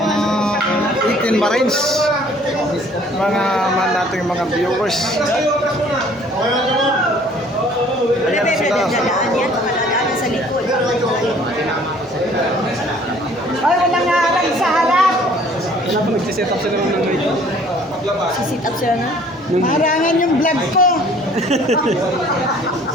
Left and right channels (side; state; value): both; normal; correlation 0.55